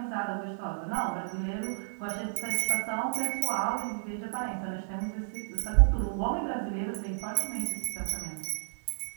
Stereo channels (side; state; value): left; silent; digital silence